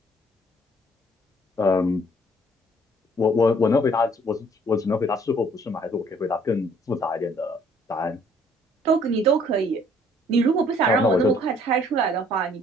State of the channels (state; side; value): normal; both; correlation 0.60